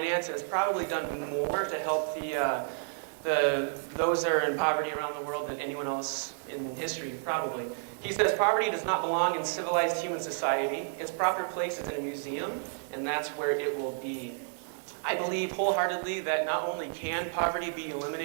and has probably done more to help those that are in poverty around the world than anyone else in history, probably. He says poverty does not belong in civilized human society. Its proper place is in a museum, and that's where it will be. I believe wholeheartedly that not only can poverty be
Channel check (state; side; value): silent; left; 57 dB below the other